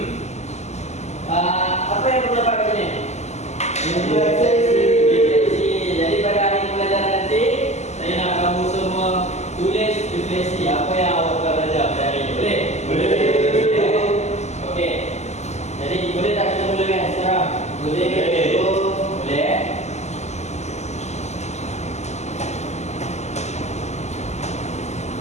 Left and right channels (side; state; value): right; late; 0.33 ms